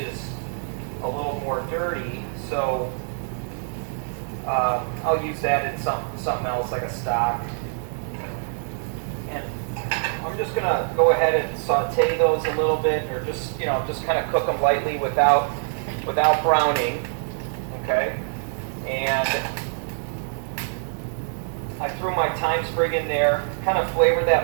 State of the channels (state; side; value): silent; left; digital silence